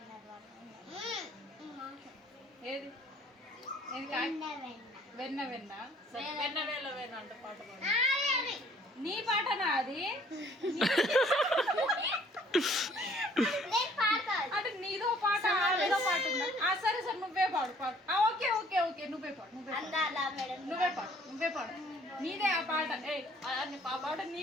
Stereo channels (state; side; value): normal; both; correlation 0.58